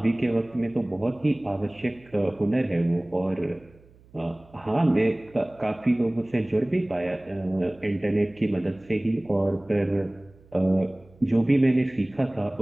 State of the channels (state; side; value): noise; right; hum, 27 dB below the sound